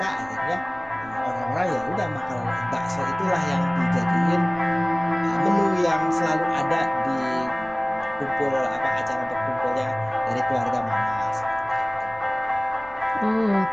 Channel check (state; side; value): noise; left; rumble, 22 dB below the sound